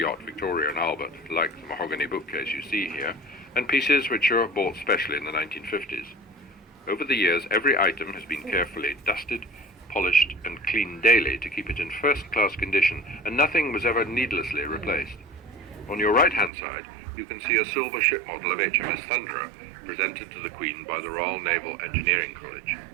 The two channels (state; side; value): drops out; left; at 16.5 s